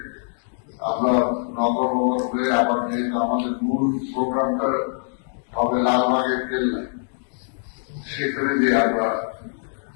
আমরা নগর হয়ে আবার যেহেতু আমাদের মূল প্রোগ্রামটা হবে লালবাগের কেল্লায়, সেখানে যে আমরা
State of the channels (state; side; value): silent; right; digital silence